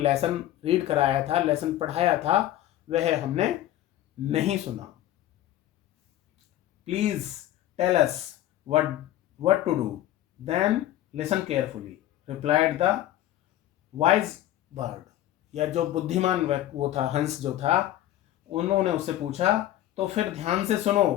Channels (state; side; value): quieter; right; 13.4 dB